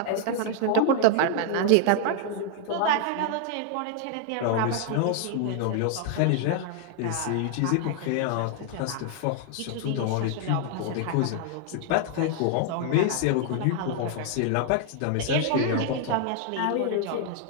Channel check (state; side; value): different; both; correlation 0.00